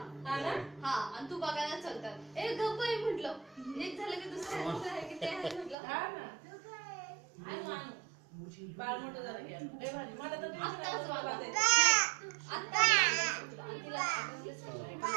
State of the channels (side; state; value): left; drops out; at 5.8 s